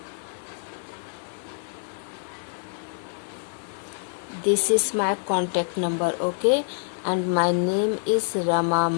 This is my contact number, okay, and my name is Rama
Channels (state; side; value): silent; right; 55 dB below the other